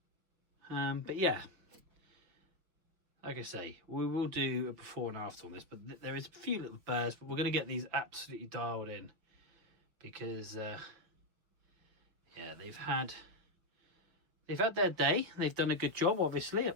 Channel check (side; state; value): left; late; 6.4 ms